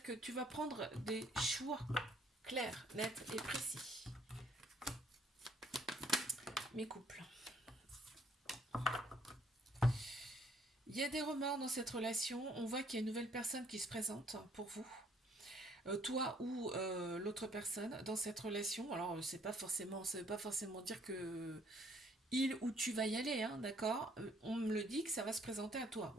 que tu vas prendre des choix clairs, nets et précis. Mes couples. Il y a des remords dans cette relation. On voit qu'il y a une nouvelle personne qui se présente pour vous. Toi ou l'autre personne dans cette relation. Alors, c'est pas forcément, ça veut pas forcément dire que il ou tu vas y aller, hein, d'accord. On me le dit que ça va se présenter à toi.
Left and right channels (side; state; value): both; normal; correlation 0.64